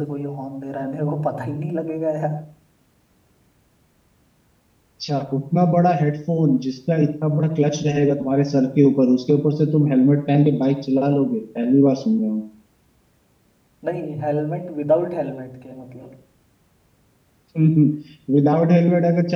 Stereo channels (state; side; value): identical; both; correlation 1.00